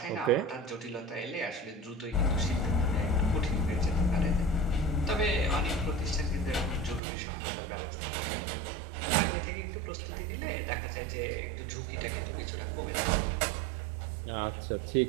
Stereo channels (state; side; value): drops out; left; at 7.0 s